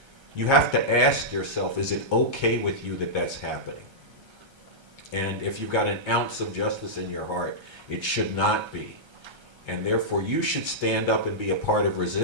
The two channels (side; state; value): left; late; 1.3 ms